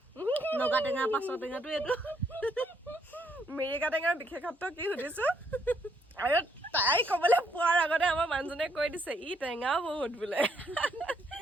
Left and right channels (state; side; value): normal; both; correlation 0.72